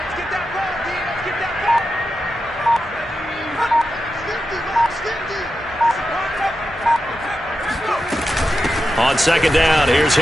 On second down, here's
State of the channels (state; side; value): normal; both; correlation 0.89